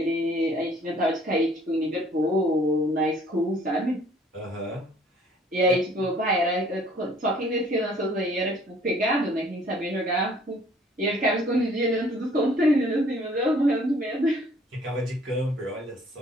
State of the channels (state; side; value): normal; both; correlation 0.57